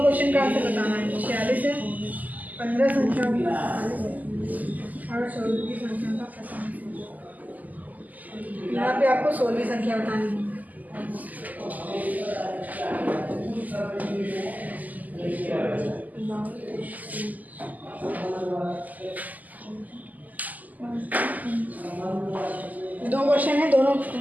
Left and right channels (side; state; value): left; late; 0.080 ms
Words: क्वेश्चन का आंसर बताना है। 46 है, 15 संख्या और 16वीं संख्या का 45। यहाँ पे आपको 16वीं संख्या बतानी है। दो क्वेश्चन है, दोनों